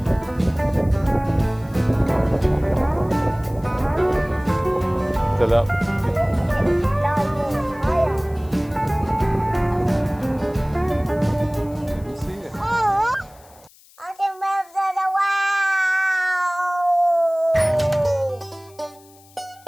Still up. See it. I can move to the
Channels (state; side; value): noise; left; hiss, 27 dB below the sound